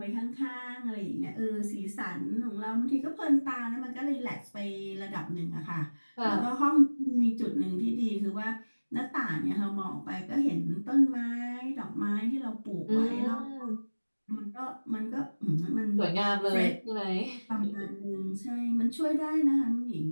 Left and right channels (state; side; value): inverted; both; correlation -1.00